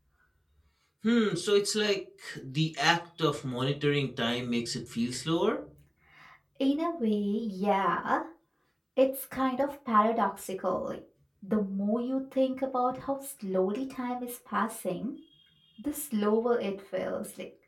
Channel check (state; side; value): identical; both; correlation 1.00